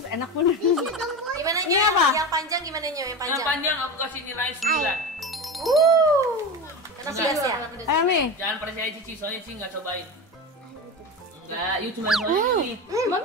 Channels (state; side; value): normal; both; correlation 0.24